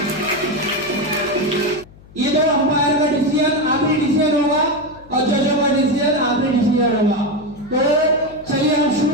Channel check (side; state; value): left; noise; hum, 23 dB below the sound